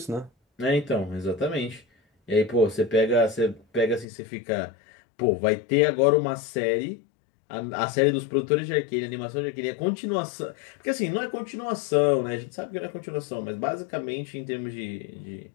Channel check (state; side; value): drops out; right; at 4.0 s